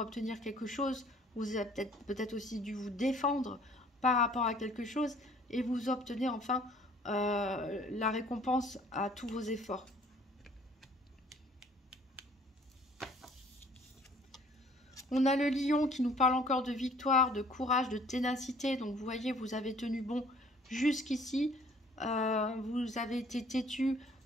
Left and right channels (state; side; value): normal; both; correlation 0.56